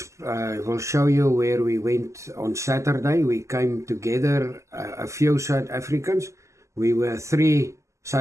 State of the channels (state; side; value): late; left; 0.14 ms